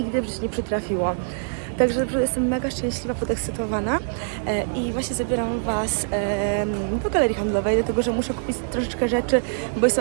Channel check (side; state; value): left; silent; digital silence